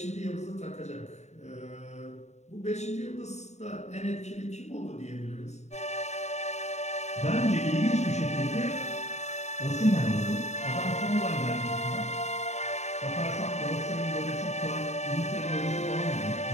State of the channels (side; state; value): right; late; 0.33 ms